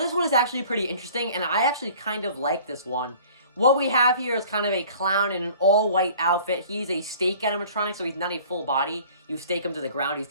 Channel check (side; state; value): both; inverted; correlation -0.49